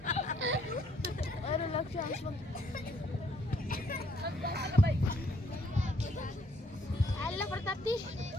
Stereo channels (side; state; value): both; normal; correlation 0.67